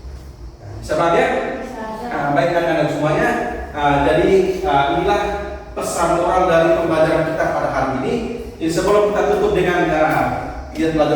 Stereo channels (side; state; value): both; identical; correlation 1.00